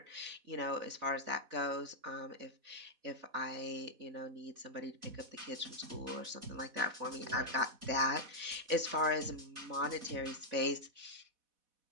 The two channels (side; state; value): left; late; 4.1 ms